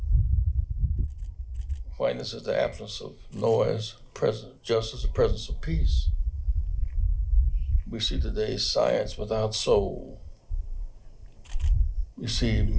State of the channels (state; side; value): identical; both; correlation 1.00